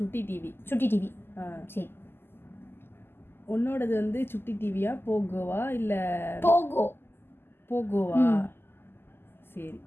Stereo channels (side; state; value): right; late; 0.11 ms